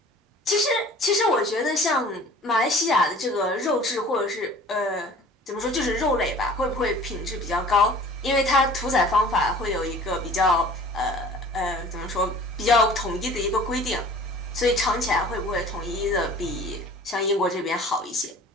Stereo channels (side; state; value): both; normal; correlation 0.47